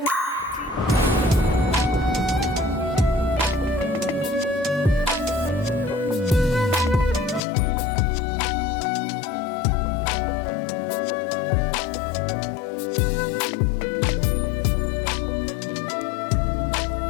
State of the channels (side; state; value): right; drops out; at 7.4 s